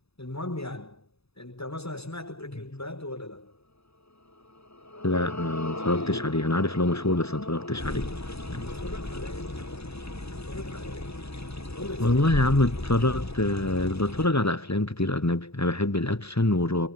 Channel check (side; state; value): right; late; 0.78 ms